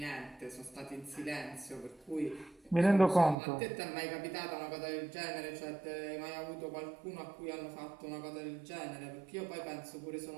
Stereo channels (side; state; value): left; drops out; at 3.4 s